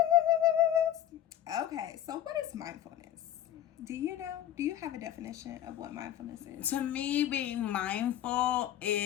Okay, so what is mindfulness? Do you know? Do you have a definition of what mindfulness is? To me, being mindful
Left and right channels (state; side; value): quieter; right; 11.5 dB